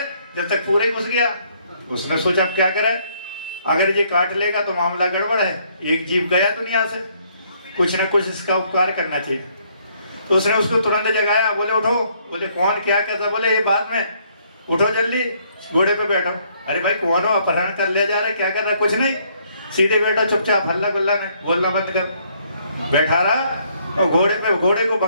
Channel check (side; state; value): both; inverted; correlation -0.68